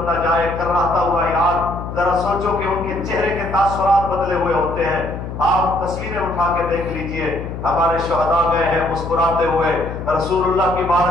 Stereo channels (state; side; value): noise; left; hum, 8 dB below the sound